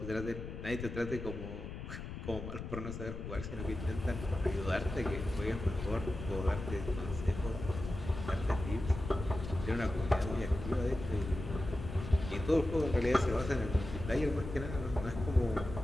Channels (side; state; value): left; noise; rumble, 8 dB below the sound